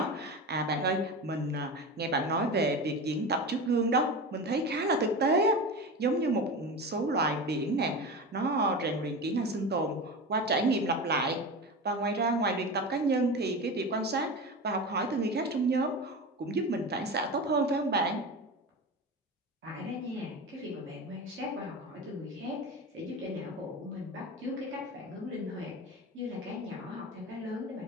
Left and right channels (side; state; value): both; normal; correlation 0.26